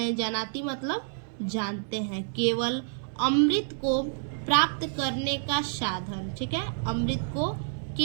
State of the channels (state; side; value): silent; left; digital silence